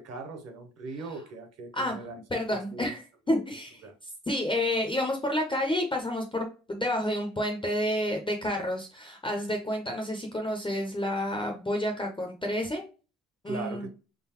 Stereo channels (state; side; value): normal; both; correlation 0.62